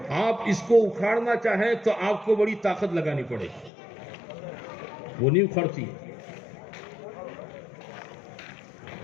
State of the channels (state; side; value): drops out; right; at 3.7 s